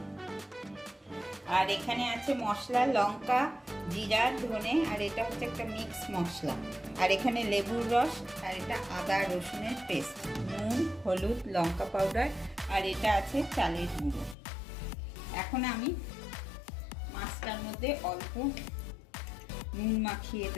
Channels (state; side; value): drops out; right; at 14.4 s